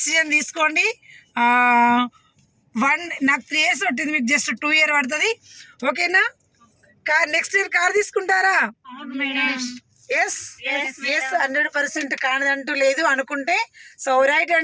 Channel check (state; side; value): identical; both; correlation 1.00